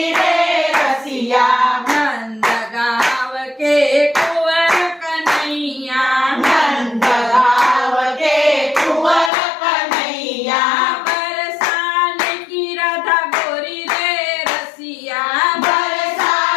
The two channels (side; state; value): right; drops out; at 9.3 s